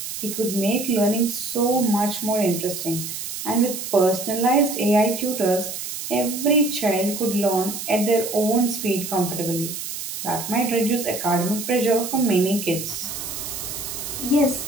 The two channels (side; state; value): right; noise; hiss, 7 dB below the sound